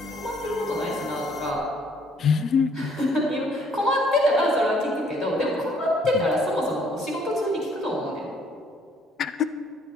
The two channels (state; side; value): normal; both; correlation 0.63